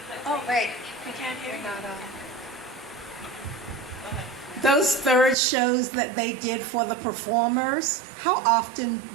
Oh, wait, we can't hear you. Those third shows that they did for the performers, how often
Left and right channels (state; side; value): drops out; left; at 5.4 s